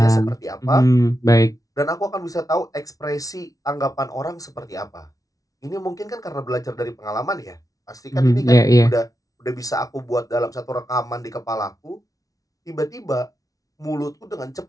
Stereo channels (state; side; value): late; right; 0.18 ms